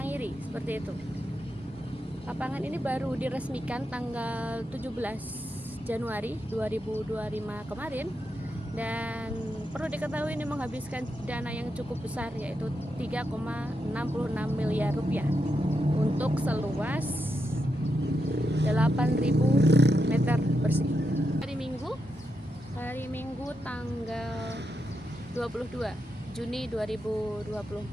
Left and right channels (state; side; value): normal; both; correlation 0.85